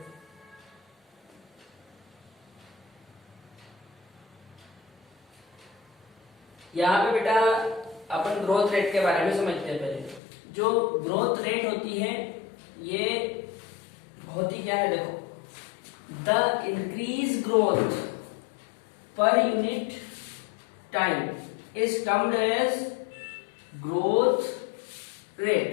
यहाँ पे बेटा अपन ग्रोथ रेट के बारे में समझते हैं। पहले जो ग्रोथ रेट होती है ये होती क्या है, देखो the increase growth per unit time is termed as growth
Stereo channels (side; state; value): right; drops out; at 10.2 s